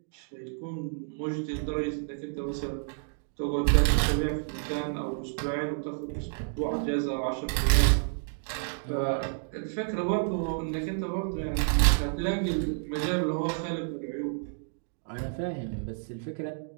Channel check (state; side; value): silent; left; digital silence